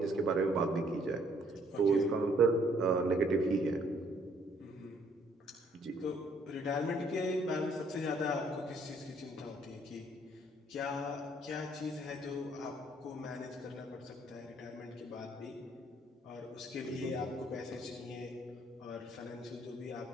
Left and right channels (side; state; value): both; normal; correlation 0.64